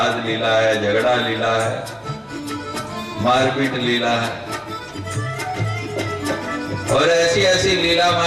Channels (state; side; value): identical; both; correlation 1.00